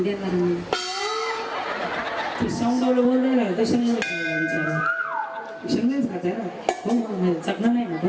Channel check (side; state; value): both; identical; correlation 1.00